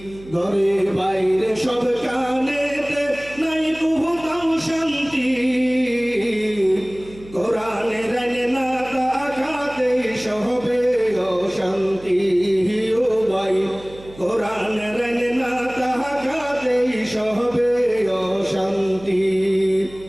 ঘরে বাইরে সব কানেতে নাই কোথাও শান্তি। কোরআনের না তাকাতেই সবে অশান্তি। শান্তি ও ভাই কোরআনের না তাহাতেই সবে অশান্তি।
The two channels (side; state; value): right; noise; hum, 19 dB below the sound